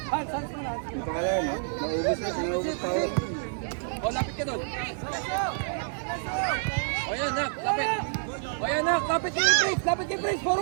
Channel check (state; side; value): silent; left; digital silence